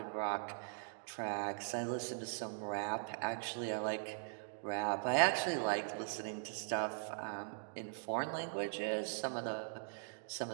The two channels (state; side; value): silent; left; digital silence